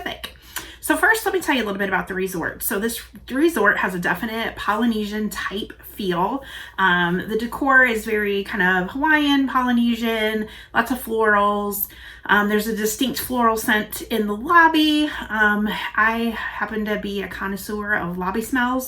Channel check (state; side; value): identical; both; correlation 1.00